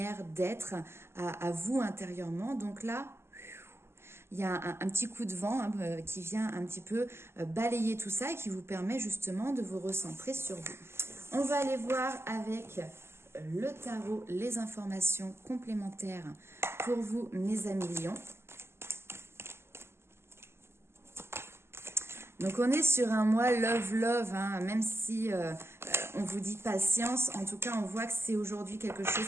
d'être, à vous intérieurement. Donc là, il y a un petit coup de vent qui vient un petit peu balayer tout ça et qui vous permet justement de vous recentrer sur vous. On va aller voir avec le tarot les informations complémentaires pour vous, mes amis lions. Donc on est sur un mois love, hein, même si on vous dit patience, en tout cas on voit que c'est aujourd'hui quelque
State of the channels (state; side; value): late; left; 0.12 ms